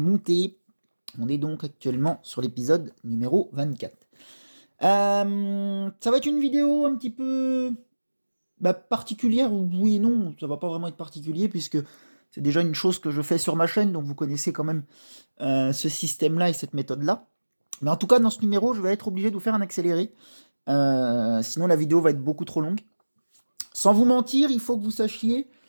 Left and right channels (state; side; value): inverted; both; correlation -1.00